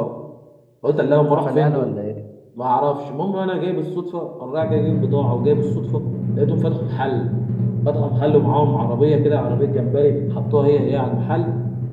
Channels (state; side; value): identical; both; correlation 1.00